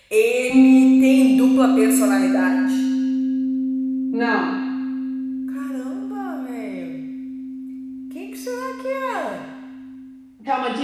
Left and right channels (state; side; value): identical; both; correlation 1.00